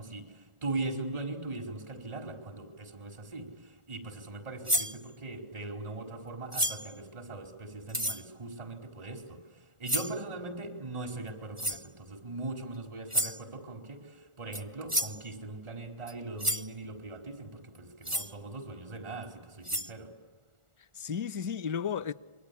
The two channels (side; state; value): left; late; 1.4 ms